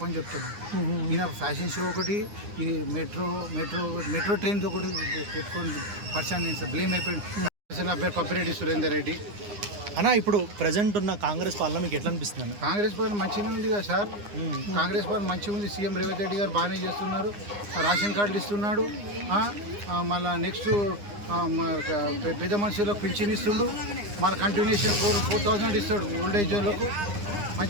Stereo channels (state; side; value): late; left; 9.8 ms